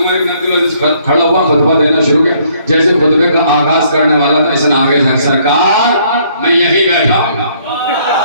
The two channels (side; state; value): both; inverted; correlation -0.65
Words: بن عبدالعزیز کھڑا ہوا، خطبہ دینا شروع کیا. جیسے خطبے کا آغاز کرنے والا تھا، اس نے آگے سے سرکار میں یہی بیٹھا ہوں.